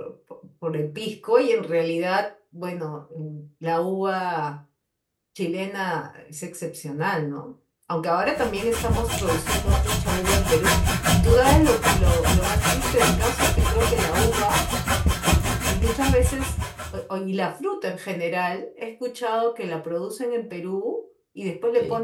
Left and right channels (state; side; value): identical; both; correlation 1.00